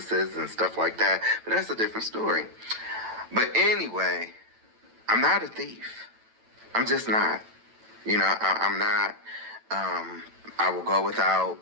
and stuff like that. But that's a different story. But anyway, I'm not a thief. I'm just not. I'm not. I will go without,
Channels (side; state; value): left; late; 9.0 ms